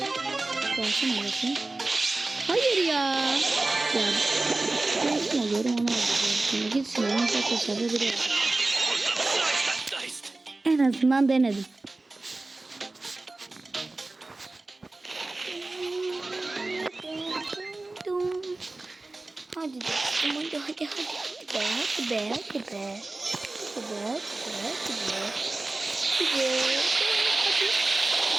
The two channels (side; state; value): left; quieter; 3.1 dB